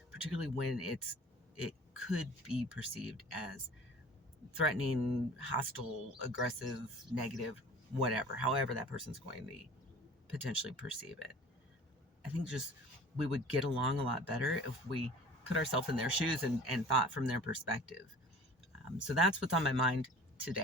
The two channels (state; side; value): normal; both; correlation 0.43